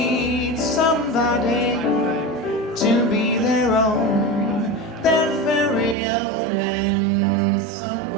somebody to be their own, their very own, and so do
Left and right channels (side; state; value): left; drops out; at 6.0 s